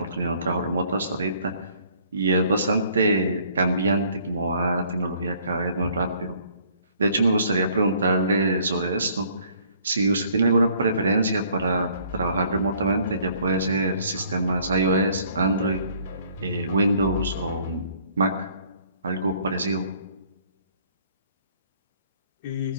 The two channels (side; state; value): both; inverted; correlation -0.60